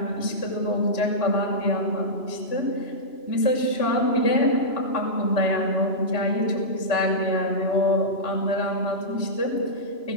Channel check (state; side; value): late; right; 2.9 ms